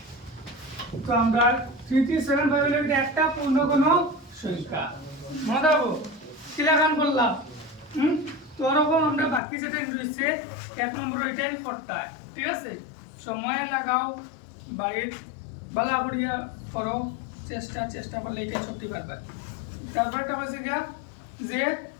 তো আমরা 3375 হলো এটা একটা পূর্ণ কোনো সংখ্যা মনে রাখবো কি লাগান বললাম তো ওরকম আমরা বাকি যেটা রয়েছে 1 নম্বর ওইটাই করতে হয় ঠিক আছে সময় লাগাও বাড়ির বালা করিয়া করো চেষ্টা করলে এটাই সত্যি পারবে তারপরে একটা বলছে গিয়া যে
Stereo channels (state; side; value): drops out; right; at 9.4 s